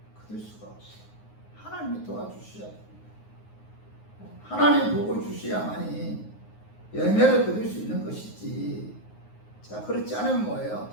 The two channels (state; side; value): late; right; 9.5 ms